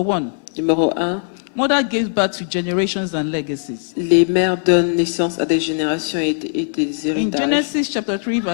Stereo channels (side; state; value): right; silent; digital silence